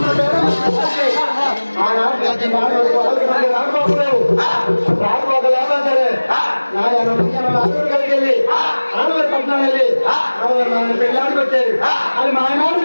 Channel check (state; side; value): inverted; both; correlation -1.00